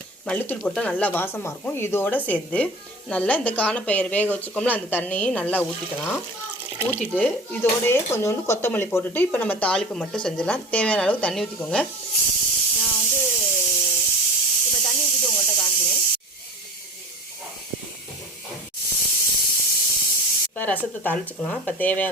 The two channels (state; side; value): normal; both; correlation 0.35